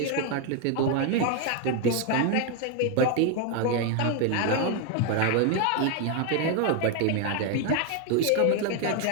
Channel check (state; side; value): different; both; correlation 0.01